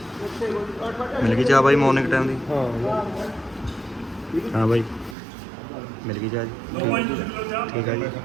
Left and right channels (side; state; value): left; drops out; at 5.2 s